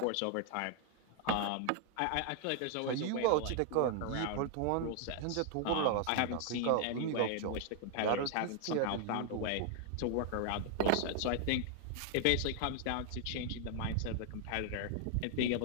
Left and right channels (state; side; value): different; both; correlation 0.00